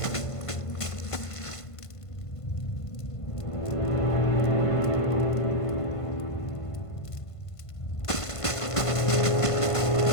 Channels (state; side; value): late; right; 1.5 ms